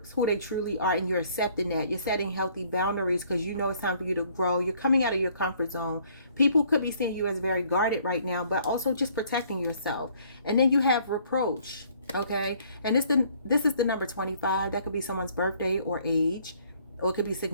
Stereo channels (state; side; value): inverted; both; correlation -0.61